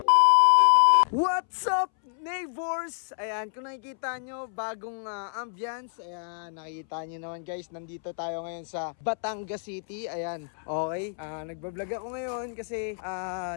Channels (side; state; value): right; silent; 59 dB below the other